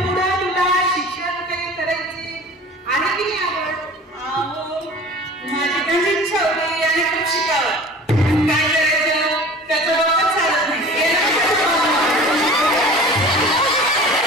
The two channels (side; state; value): both; normal; correlation 0.42